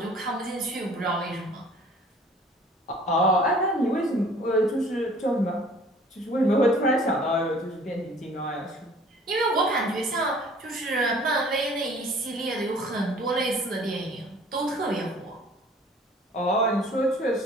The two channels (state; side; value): normal; both; correlation 0.52